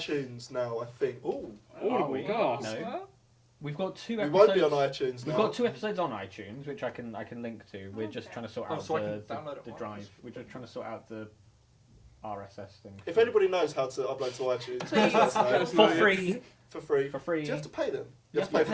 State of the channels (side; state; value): both; identical; correlation 1.00